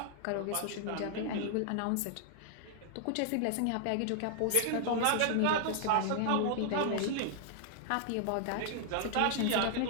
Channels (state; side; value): different; both; correlation -0.01